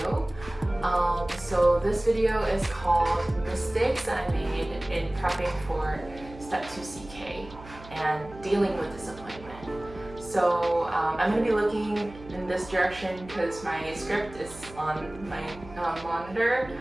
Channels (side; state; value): right; noise; hum, 18 dB below the sound